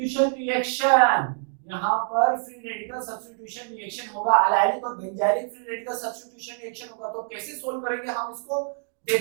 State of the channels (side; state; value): left; silent; digital silence